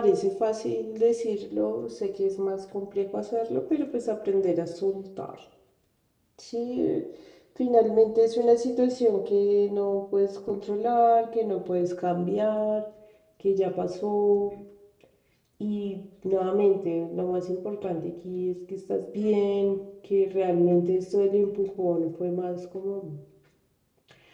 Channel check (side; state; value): both; identical; correlation 1.00